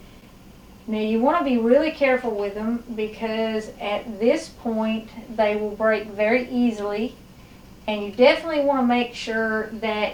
Now you want to be really careful with them because at this point they will break very easily, and you definitely want to make sure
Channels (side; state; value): both; identical; correlation 1.00